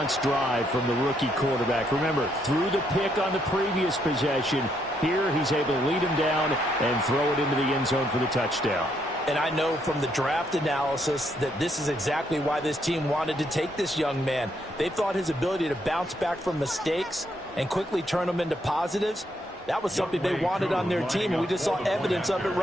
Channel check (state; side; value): normal; both; correlation 0.74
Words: drive from the rookie quarterback. Remember, threw the pick on the previous possession. Here, he's able to lead him down and throw it into the end zone for the touchdown. And I know from the draft analysis that this is exactly why this team wanted to take this young man. They thought his ability to bounce back from mistakes and quickly turn them into positives, that was something they wanted on their team, and we just saw evidence of it